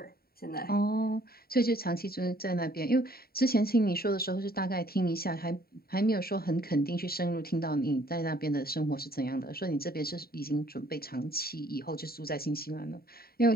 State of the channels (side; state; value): right; late; 0.44 ms